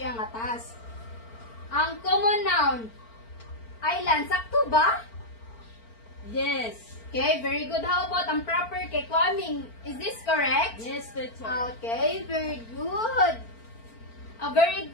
nga task. Ang common noun, island, sakto ba? Yes. Okay, very good. How about ang proper kay Kwaming? Is this correct? Yes, teacher. Okay, very good. A very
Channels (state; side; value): late; right; 4.4 ms